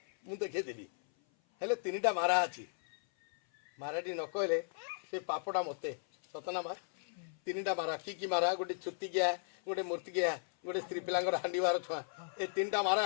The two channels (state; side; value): silent; right; 54 dB below the other